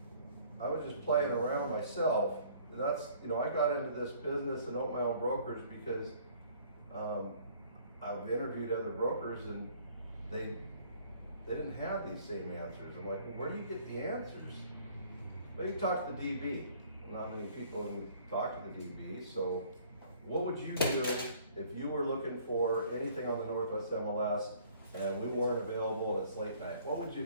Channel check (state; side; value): inverted; both; correlation -0.56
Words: was just playing around myself, that's, you know, I got into this business and opened my own brokerage because I've interviewed other brokers and they didn't have these same answers. I'm like, well, where do you get the answers? Well, you talk to the DB. Not many people talk to the DB. So what would you do if you were looking for anything on the Northwest MLS and we weren't available and it's late night? What would you